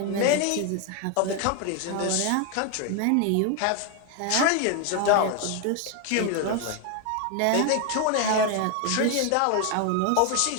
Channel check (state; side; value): different; both; correlation 0.01